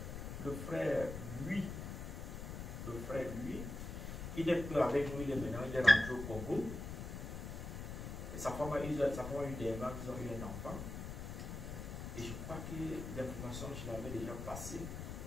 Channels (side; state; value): left; noise; rumble, 7 dB below the sound